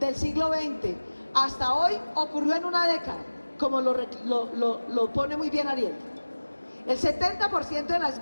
hasta hoy, ocurrió en una década, como lo pone muy bien Ariel. El 70% de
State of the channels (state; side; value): inverted; both; correlation -1.00